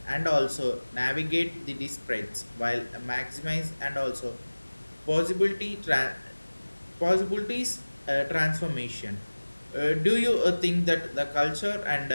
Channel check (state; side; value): inverted; both; correlation -1.00